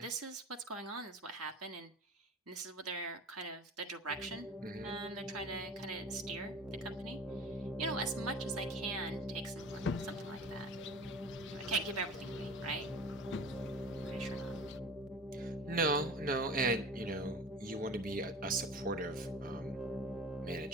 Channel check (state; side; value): normal; both; correlation 0.38